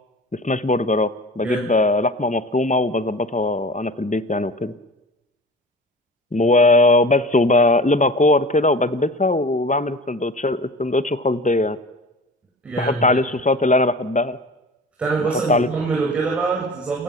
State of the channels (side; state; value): both; normal; correlation 0.37